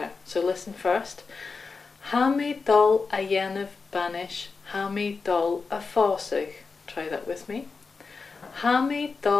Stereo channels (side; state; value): right; quieter; 4.6 dB